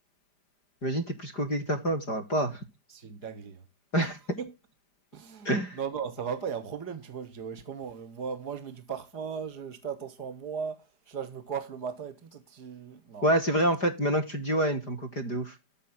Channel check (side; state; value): right; late; 4.9 ms